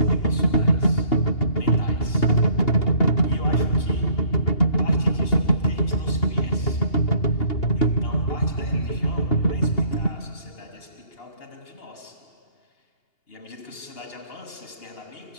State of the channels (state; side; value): late; right; 2.8 ms